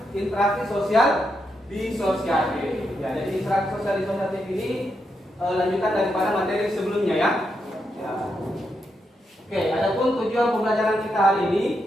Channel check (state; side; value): normal; both; correlation 0.82